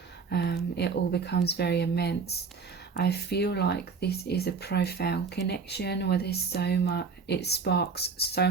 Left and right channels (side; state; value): left; quieter; 5.1 dB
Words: It all becomes very immense. I feel like this is a profound connection where there's so much, it sparks so